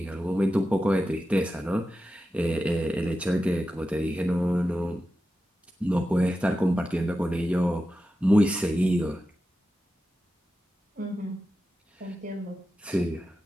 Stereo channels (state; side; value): normal; both; correlation 0.92